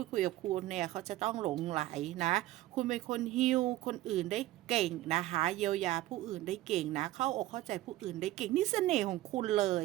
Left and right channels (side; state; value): left; quieter; 15.9 dB